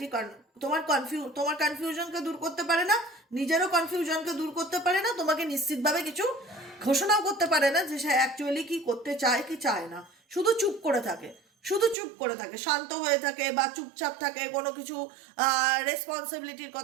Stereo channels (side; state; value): left; drops out; at 12.0 s